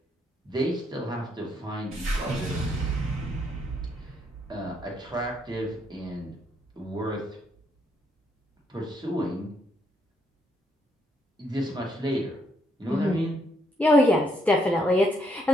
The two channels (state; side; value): normal; both; correlation 0.74